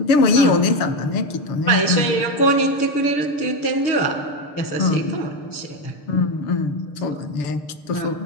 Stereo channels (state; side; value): late; right; 6.7 ms